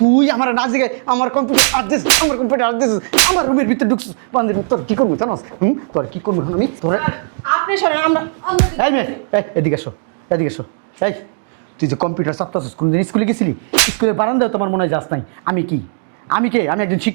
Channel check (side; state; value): left; silent; digital silence